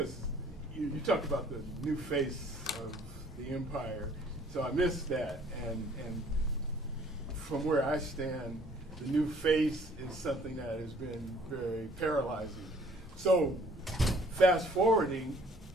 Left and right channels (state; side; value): normal; both; correlation 0.57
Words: you talked about the new face of the empire, so I missed that, and from where I stand, the new face is something that has been very paralyzing. So fast forwarding,